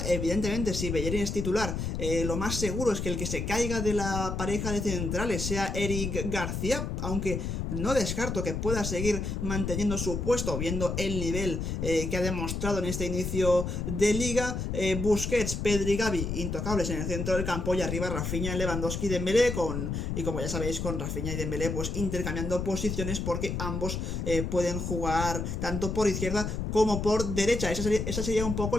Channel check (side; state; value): left; noise; rumble, 3 dB below the sound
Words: Evidentemente, si Bellerín es titular, lo más seguro es que el que se caiga de la pareja de centrales sea Eric García, aunque no descarto que pueda seguir manteniendo su puesto, viendo el nivel que ha demostrado en este inicio de liga. Busquets, Pedri, Gavi, intocables en el centro del campo, y arriba Rafinha, Lewandowski, Dembélé, y como ya sabéis, con Rafinha y Dembélé pues intercambiando posiciones, porque ambos pueden jugar tanto por izquierda como por derecha. Esa sería un poco